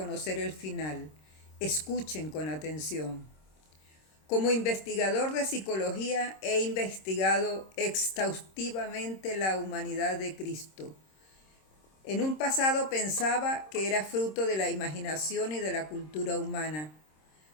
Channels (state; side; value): late; right; 26 ms